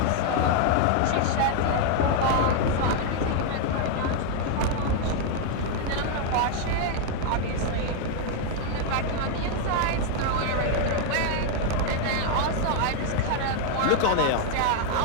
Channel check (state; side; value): different; both; correlation 0.00